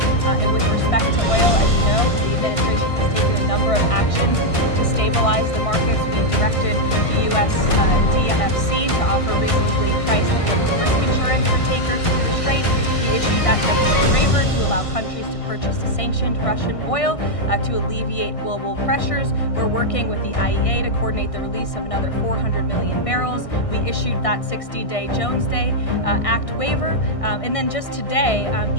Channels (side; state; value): right; late; 1.6 ms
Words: And with respect to oil, as you know, the administration has taken a number of actions to stabilize the markets. We directed the U.S. DFC to offer reasonably priced political risk insurance for tankers through the strait. We issued that temporary waiver to allow countries to purchase sanctioned Russian oil to alleviate global pressures. We're working with the IEA to coordinate the release of another 400 million barrels. We issued that 60-day Jones Day Act waiver. And then just today,